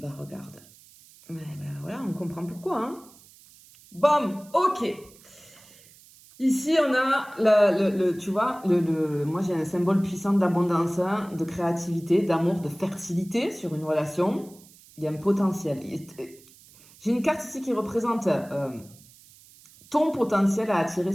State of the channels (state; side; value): noise; right; hiss, 24 dB below the sound